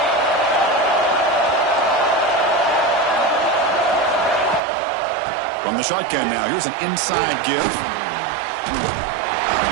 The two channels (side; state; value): left; drops out; at 4.6 s